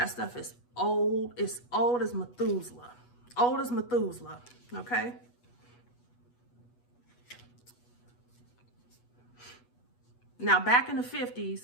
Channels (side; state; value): right; late; 8.2 ms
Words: stuff is old. It's old as Methuselah. Old as Methuselah, okay? Now, back in the